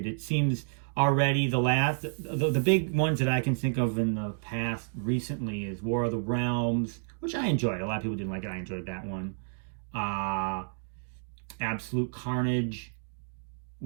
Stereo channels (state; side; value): silent; left; digital silence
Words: It seems already the big ones that I can think of in the past recently is War of the Realms, which I enjoyed. A lot of people didn't like it. I enjoyed that one. Absolute Carnage,